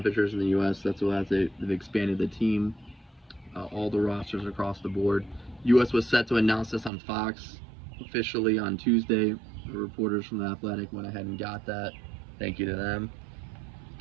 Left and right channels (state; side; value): drops out; left; at 6.9 s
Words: in the U.S. That's why they've expanded the team, all the rosters across the board. U.S. was set to announce this on Fox officially on Tuesday. The reporters from The Athletic went ahead and got that. Thank you to them.